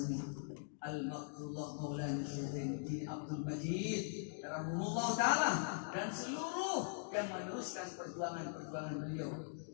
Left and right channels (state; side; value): silent; right; digital silence